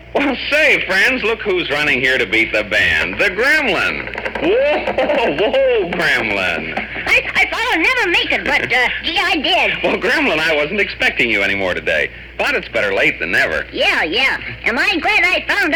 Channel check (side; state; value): both; identical; correlation 1.00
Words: Well, say, friends, look who's running here to beat the band. The Gremlin. Whoa, Gremlin. I thought I'd never make it, but, gee, I did. Well, Gremlin, I wasn't expecting you anymore today. But it's better late than never. Yeah. Am I glad I found